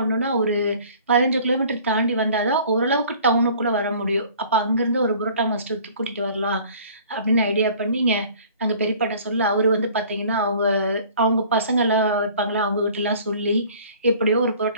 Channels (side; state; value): both; inverted; correlation -0.50